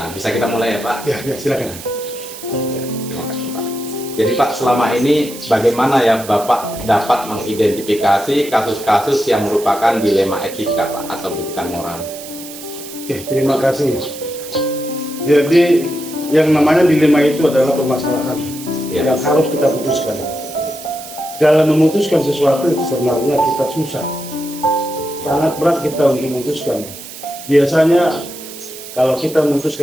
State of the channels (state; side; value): noise; right; hiss, 13 dB below the sound